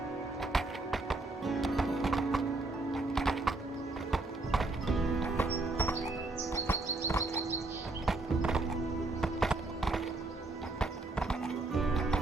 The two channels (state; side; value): quieter; left; 3.1 dB